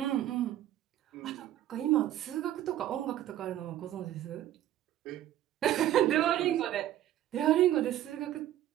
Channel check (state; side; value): quieter; left; 12.8 dB